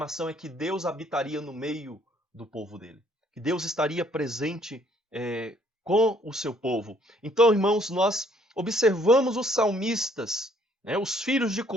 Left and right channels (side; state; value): both; normal; correlation 0.64